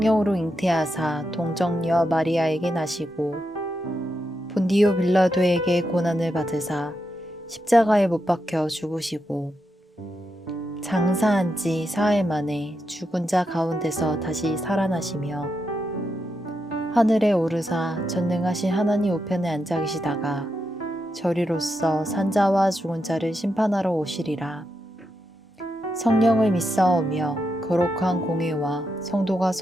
잉태하사 동정녀 마리아에게 나시고 본디오 빌라도에게 고난을 받으사 십자가에 못 박혀 죽으시고 장사한 지 사흘 만에 죽은 자 가운데서 다시 살아나시며 하늘에 오르사 전능하신 하나님 우편에 앉아 계시다가 저리로서 산자와 죽은 자를 심판하러 오시리라. 성령을 믿사오며 거룩한 공회와 성도가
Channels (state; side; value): normal; both; correlation 0.85